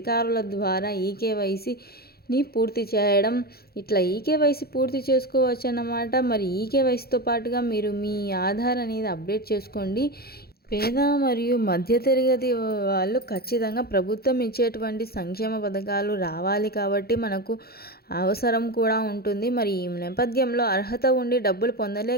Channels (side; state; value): right; late; 0.45 ms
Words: ద్వారా ఈకేవైసీని పూర్తి చేయడం, ఇట్లా ఈకేవైసీ పూర్తి చేసుకోవచ్చు అన్నమాట. మరి ఈకేవైసీతో పాటుగా మీరు మీ ఆధార్ అనేది అప్డేట్ చేసుకోండి. పేద మరియు మధ్యతరగతి వాళ్ళు ఖచ్చితంగా ప్రభుత్వం ఇచ్చేటువంటి సంక్షేమ పథకాలు రావాలి కాబట్టి మనకు అవసరం కూడా ఉంటుంది. మరి ఈ నేపథ్యంలో అర్హత ఉండి డబ్బులు